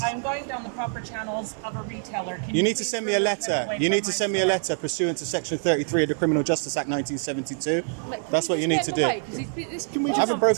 I'm going down the proper channels of a retailer. Can You need to please send me a remove him letter. away You from need to my send me a store? letter pursuant to Section 33 of the Criminal Justice Act 1972. That's what you need to do. I haven't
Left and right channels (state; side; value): silent; left; 59 dB below the other